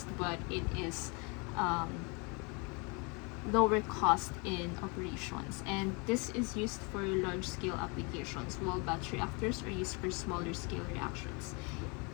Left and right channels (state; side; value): quieter; right; 31.3 dB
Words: but it is lower cost in operations, and this is used for large scale applications, while batch reactors are used for smaller scale reactions.